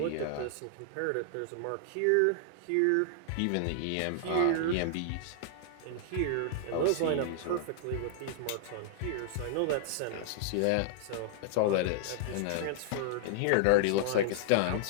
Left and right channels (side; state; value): both; different; correlation -0.01